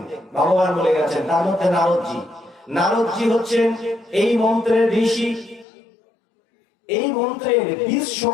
ভগবান বলে গেছেন, তার মধ্যে নারদজি। নারদজি হচ্ছেন এই মন্ত্রের ঋষি। এই মন্ত্রের বীজ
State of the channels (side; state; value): right; drops out; at 5.7 s